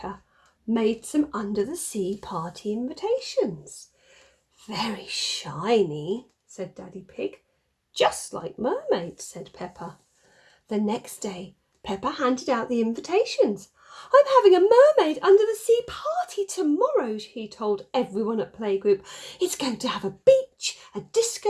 made some under-the-sea party invitations. Very shiny, said Daddy Pig. Just like mermaids, said Peppa. The next day, Peppa handed out the invitations. I'm having a mermaid under-the-sea party tomorrow, he told everyone at playgroup. It's going to have a beach, a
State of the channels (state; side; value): identical; both; correlation 1.00